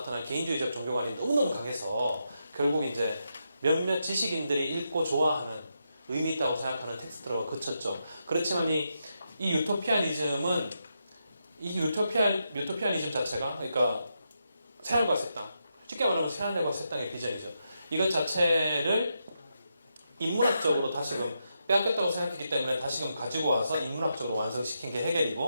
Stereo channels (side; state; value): both; inverted; correlation -0.84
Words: 개인주의적 종교관이 너무너무 강해서 결국 이제 몇몇 지식인들이 읽고 좋아하는 의미 있다고 생각하는 텍스트로 그쳤죠. 그렇지만 이 유토피아니즘은 유토피아니즘 자체가 그러니까 새하늘과 새 땅, 쉽게 말하면 새하늘과 새 땅의 비전이죠. 이것 자체를 인문학적으로 다시금 빼앗겼다고 생각했기 때문에 다시금 가지고 와서 인문학적으로 완성시킨 게